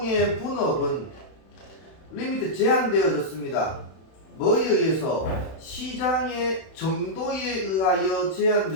분업은 리미트 제한되어졌습니다. 뭐에 의해서? 시장의 정도에 의하여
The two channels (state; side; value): late; right; 31 ms